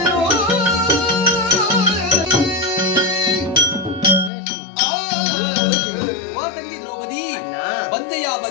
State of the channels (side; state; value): right; drops out; at 4.3 s